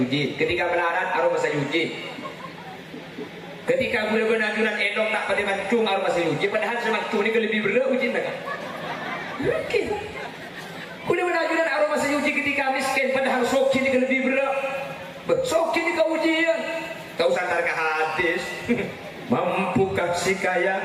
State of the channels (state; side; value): identical; both; correlation 1.00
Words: ketika melarat aroma sayuji. Ketika kuliah benajuran endong tak pada mancung aroma sayuji, padahal semancung ini lebih berat ujian tak? Mungkin. Kuliah benajuran aroma sayuji ketika miskin, padahal soki ini lebih berat. Soki ini ke ujian. Kau santar ke hadis. Mampukah si kaya